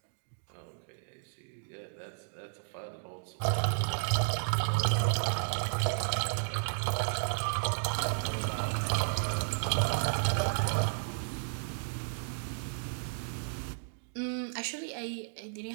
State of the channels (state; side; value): silent; left; digital silence